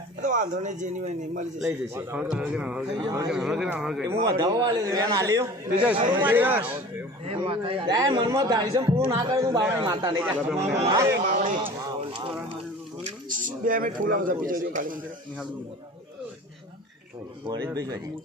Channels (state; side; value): normal; both; correlation 0.41